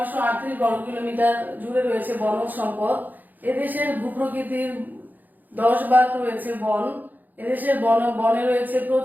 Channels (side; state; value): left; late; 0.084 ms